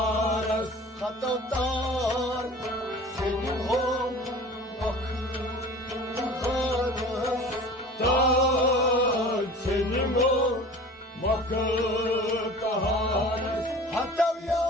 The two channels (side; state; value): both; normal; correlation 0.41